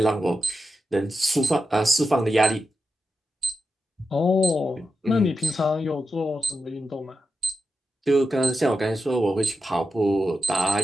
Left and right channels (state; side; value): normal; both; correlation 0.88